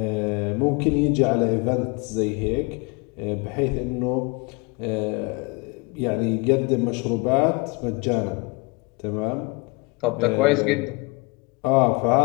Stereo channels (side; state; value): right; quieter; 28.8 dB